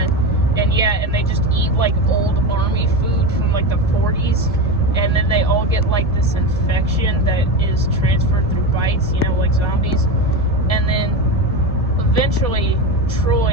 they just eat like old army food from like the 40s, and then they all get like this infection that is transferred through bites, like zombies. And then eventually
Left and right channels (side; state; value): both; normal; correlation 0.20